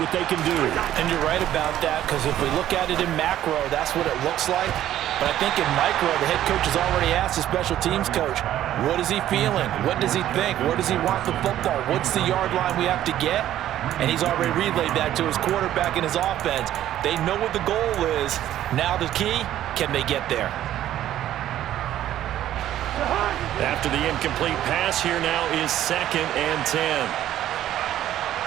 what they can do. And you're right about that, because if we look at it in macro, that's what it looks like. But I think in micro, the head coach has already asked the special teams coach, what is he feeling? What does he think? Where does he want the football? What's the yard line we have to get? And he's already relayed that to his quarterback and his offense. They know what the goal is. Now the key, can they get there? After the incomplete pass, here now is 2nd and 10.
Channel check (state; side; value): quieter; left; 12.4 dB